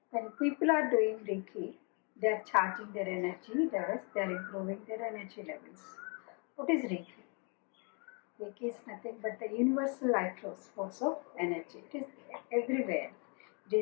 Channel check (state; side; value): quieter; right; 35.3 dB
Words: When people are doing Reiki, they are charging their energy, they are improving their energy levels. What is Reiki? Reiki is nothing but the universal life force of energy. It is everywhere. It